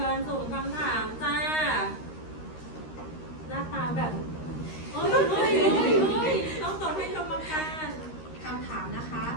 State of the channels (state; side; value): late; right; 13 ms